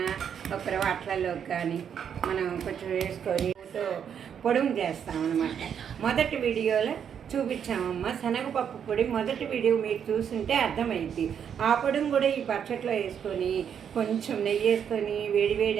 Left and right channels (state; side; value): quieter; left; 8.1 dB